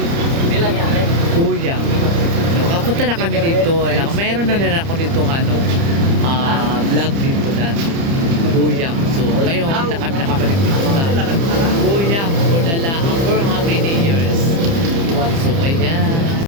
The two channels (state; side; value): late; left; 30 ms